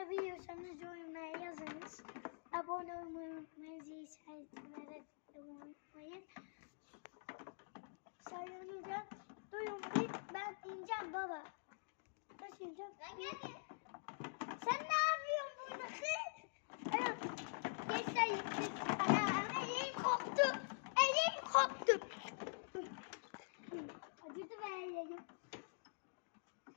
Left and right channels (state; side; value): silent; right; digital silence